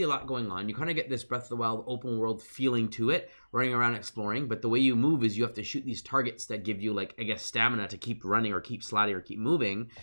a lot going on. You kind of get this Breath of the Wild open world feeling to it, running around exploring. But the way you move is you have to shoot these targets that give you like, I guess, stamina to keep running or keep sliding or keep moving.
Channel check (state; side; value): inverted; both; correlation -1.00